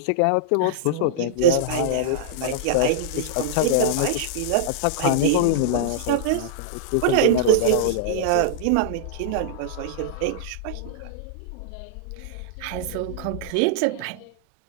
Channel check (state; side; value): different; both; correlation -0.02